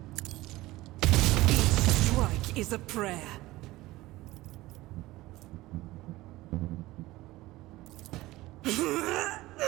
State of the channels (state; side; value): quieter; left; 18.4 dB